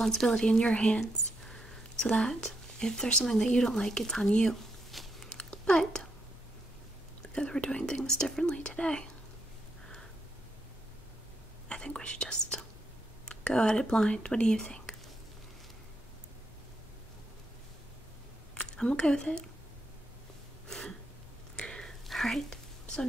in your hands so that if there's something that you don't like, it's on you. But because we're doing things differently today, I think we should just go at it blind. What do you think? I'm okay with it. Alright, so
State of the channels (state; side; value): normal; both; correlation 0.79